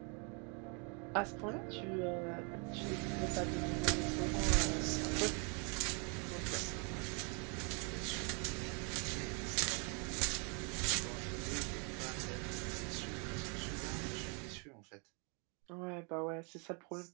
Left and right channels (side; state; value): left; quieter; 35.9 dB